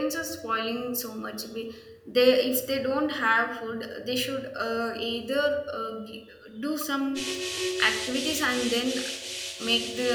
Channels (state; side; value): identical; both; correlation 1.00